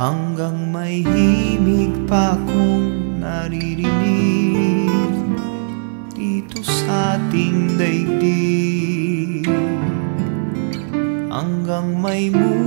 may himig pa akong naririnig dito sa ating daigdig, hanggang may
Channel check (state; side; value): silent; left; digital silence